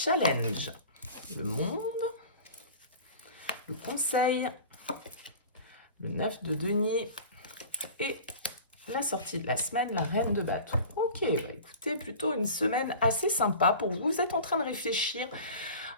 le monde, le conseil, le 9 de denier et la sortie de la semaine, la reine de bâton. Ok, bah écoutez, plutôt une semaine assez sympa pour vous. Vous êtes en train de réfléchir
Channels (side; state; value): both; inverted; correlation -0.39